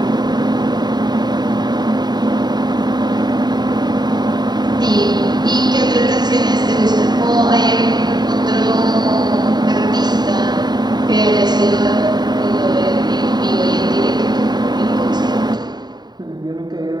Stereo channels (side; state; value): left; late; 0.20 ms